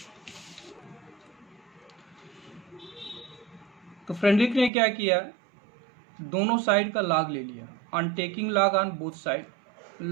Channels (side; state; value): left; drops out; at 4.7 s